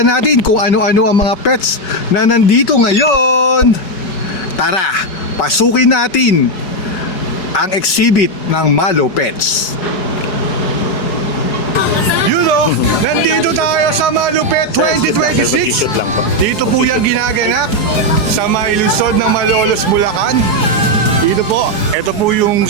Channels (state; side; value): late; right; 4.8 ms